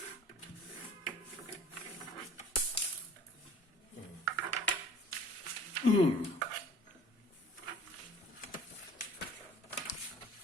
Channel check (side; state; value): both; normal; correlation 0.49